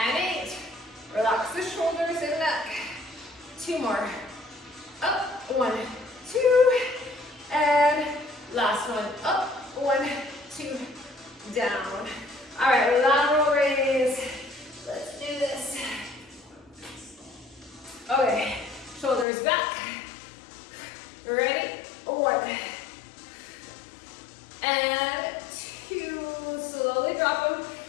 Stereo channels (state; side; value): drops out; right; at 19.2 s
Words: 8. Relax the shoulders and neck. 2 more. Up, 1, 2, and last one. Up, 1, 2, down. All right, lateral raise. Let's do this. Okay, shoulders back. Ready? 1, and 2. Slowly drop them,